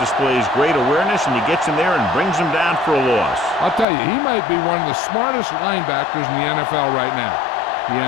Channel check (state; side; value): drops out; right; at 3.9 s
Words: great awareness, and he gets in there and brings him down for a loss. I'll tell you, he might be one of the smartest linebackers in the NFL right now. He